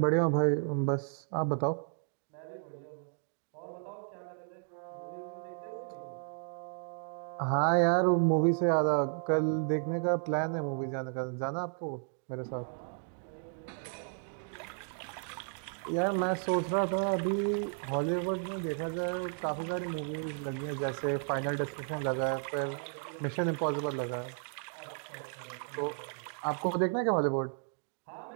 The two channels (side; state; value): left; silent; 55 dB below the other